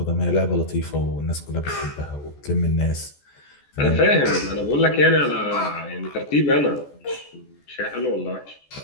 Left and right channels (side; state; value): right; late; 14 ms